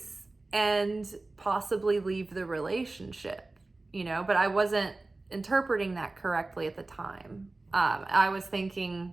and possibly leave the relationship, but I wasn't interpreting that correctly at the time. I was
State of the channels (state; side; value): quieter; left; 3.2 dB